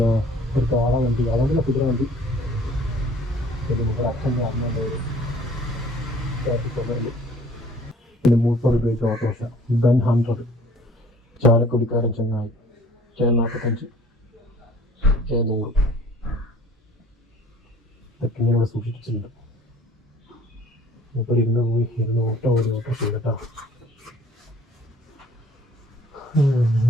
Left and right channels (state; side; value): normal; both; correlation 0.53